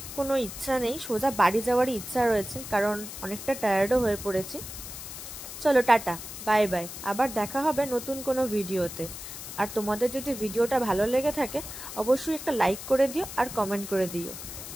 কোনো ইচ্ছা নেই, সোজা বাড়ি যাওয়ারই ইচ্ছা রয়েছে, কারণ অনেকটা টায়ার্ডও হয়ে পড়েছি। চলো টাটা, বাই বাই, আবার দেখা হবে নতুন কোনো ভিডিওতে। আর তোমাদের যদি ভিডিওটা ভালো লেগে থাকে অবশ্যই একটা লাইক করে দিও আর কমেন্ট করে দিও।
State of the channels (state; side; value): noise; left; hiss, 10 dB below the sound